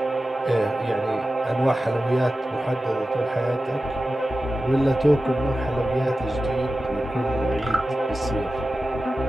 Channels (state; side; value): normal; both; correlation 0.94